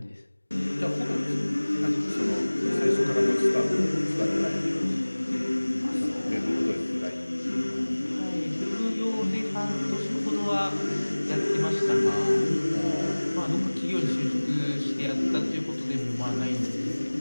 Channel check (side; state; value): both; inverted; correlation -1.00